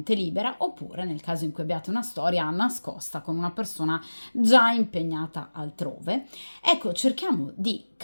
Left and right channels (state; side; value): inverted; both; correlation -1.00